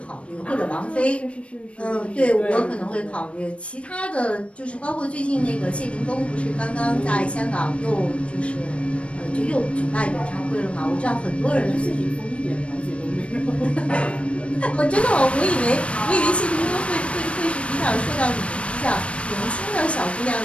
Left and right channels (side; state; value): right; late; 0.061 ms